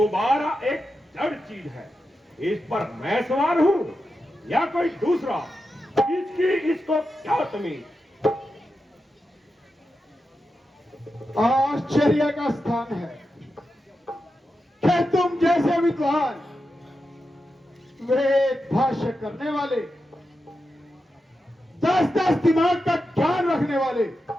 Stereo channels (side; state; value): both; normal; correlation 0.89